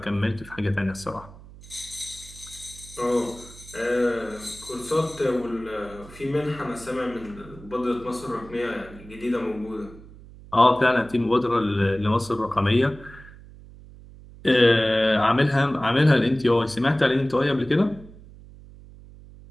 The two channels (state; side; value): noise; right; hum, 19 dB below the sound